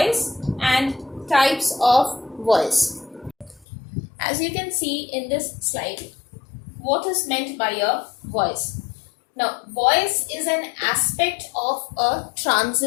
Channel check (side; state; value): right; drops out; at 3.7 s